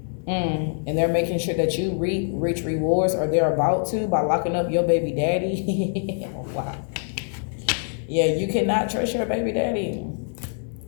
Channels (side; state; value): right; silent; 58 dB below the other